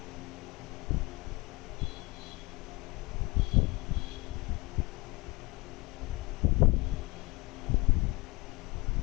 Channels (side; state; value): right; quieter; 23.5 dB